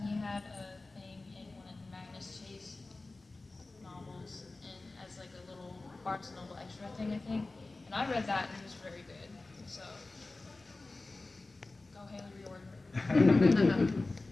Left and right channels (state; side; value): quieter; right; 3.3 dB